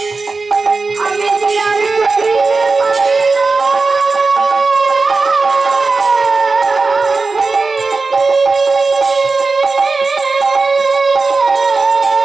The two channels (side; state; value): left; quieter; 4.0 dB